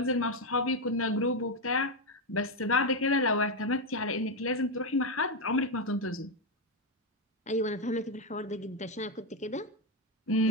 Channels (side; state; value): both; normal; correlation 0.05